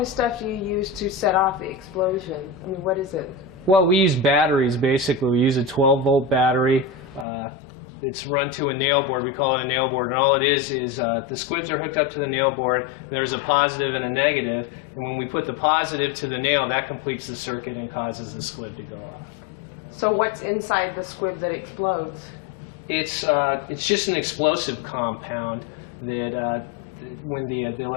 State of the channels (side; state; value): right; drops out; at 7.2 s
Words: stuff do you use to set off the explosion? I mean, what is it? Well, we use batteries, basically. We use a 12-volt battery. It's run to a nail board. We call it a nail board. And all it is the squibs are hooked up to the nail board. There's a positive and a negative. And when we put the positive to the nail, that completes the circuit and causes the squib to go off. So what's inside the squib that explodes? It's just an explosive compound that when the